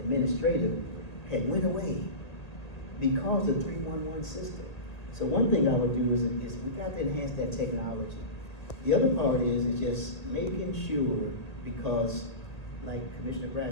had went away because of the 311 system. So one thing I would do is we got to enhance that technology. The other part is just making sure, because like Commissioner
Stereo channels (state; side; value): late; right; 1.9 ms